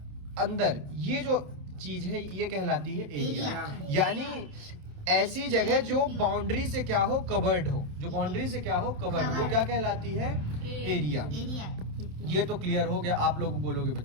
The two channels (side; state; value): left; late; 27 ms